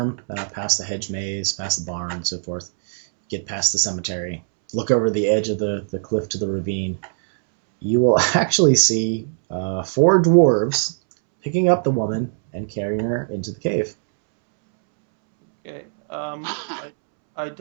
past the hedge maze, past the barn, and so forth, get past the cemetery, look over the edge of the cliff to the ravine, you will actually see 4 dwarves picking up the woman and carrying her into the cave. Okay. I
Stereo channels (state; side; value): silent; left; 65 dB below the other